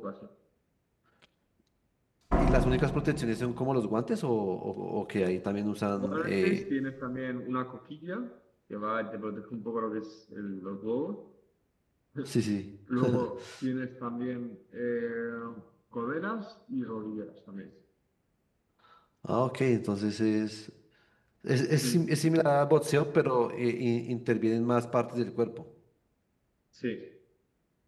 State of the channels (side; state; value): both; identical; correlation 1.00